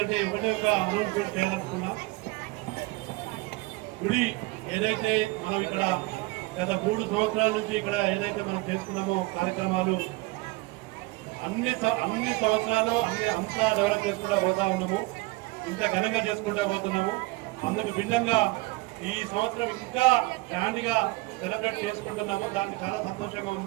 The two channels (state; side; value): quieter; left; 22.6 dB